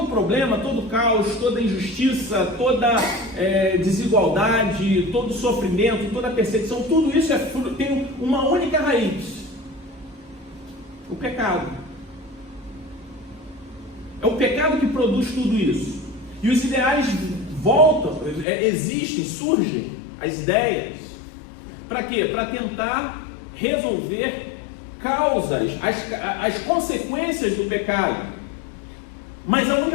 problema, todo caos, toda injustiça, toda desigualdade, todo sofrimento, toda perseguição, tudo isso tem uma única raiz: o pecado. É o pecado que produz tudo isso. E os ideais voltam, existem, surgem, as ideias. Para quê? Para tentar resolver causas, as consequências do pecado. Mas a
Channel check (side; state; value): right; drops out; at 18.4 s